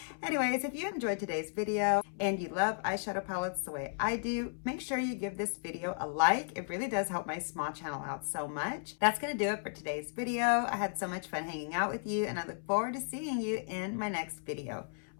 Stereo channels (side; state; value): right; silent; 55 dB below the other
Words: Anyways, if you enjoyed today's video and you love eyeshadow palettes the way I do, make sure you give this video a like. It really does help my small channel out so much. That's gonna do it for today's video. I had so much fun hanging out with you, and I look forward to seeing you in my next video.